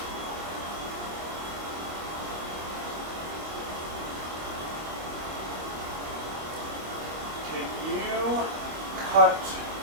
Can you cut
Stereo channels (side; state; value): left; late; 25 ms